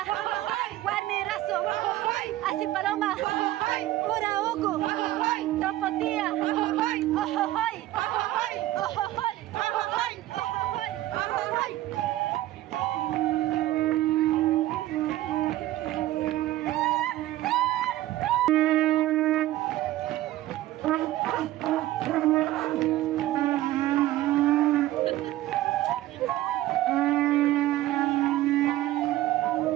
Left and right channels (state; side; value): quieter; left; 15.3 dB